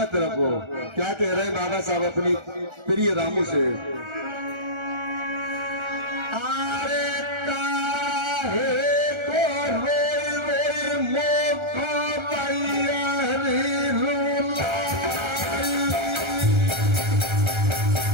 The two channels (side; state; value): left; late; 1.3 ms